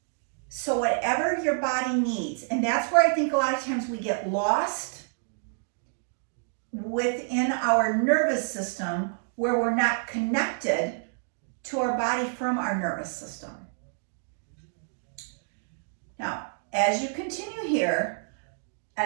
So whatever your body needs, and that's where I think a lot of times we get lost within our nervous system, where we're not connected to our body from our nervous system. Now, as you continue here,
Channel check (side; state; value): left; silent; digital silence